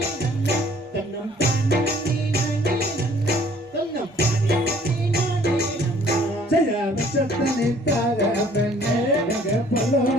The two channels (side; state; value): both; normal; correlation 0.57